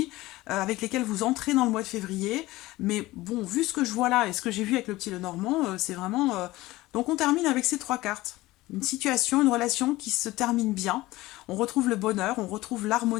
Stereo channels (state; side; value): quieter; right; 18.6 dB